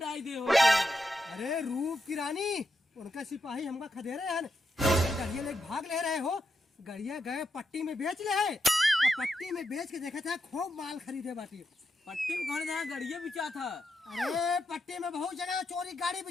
दे हो। अरे रूप की रानी उनका सिपाही हमका खदेरे हैं, गड़िया ले भाग ले रहे हो। गड़िया गए पट्टी में बेच ले है और पट्टी में बेच के देखा था खूब माल खरीदे बाटी। पट्टी में कौन जहाँ गड़िया बिचा था? अरे पट्टी में बहुत जगह चोरी गाड़ी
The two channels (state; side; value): normal; both; correlation 0.84